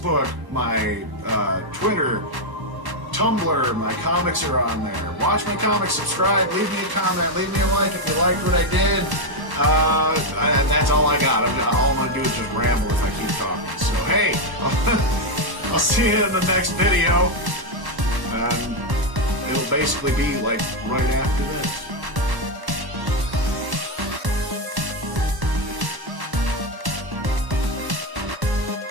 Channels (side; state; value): left; late; 1.1 ms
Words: my Twitter, Tumblr, my comics are on there. Watch my comics, subscribe, leave me a comment, leave me a like if you liked what I did. That's all I got. All I'm going to do is just ramble if I keep talking. So hey, I'll see you in the next video. And it'll basically be like right after this.